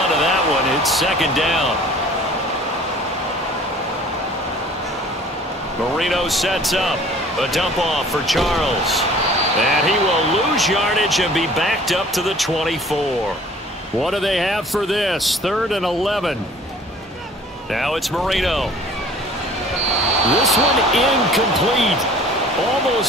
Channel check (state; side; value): normal; both; correlation 0.50